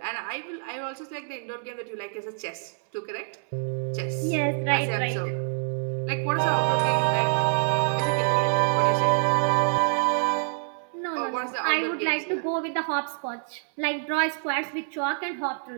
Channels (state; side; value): silent; left; digital silence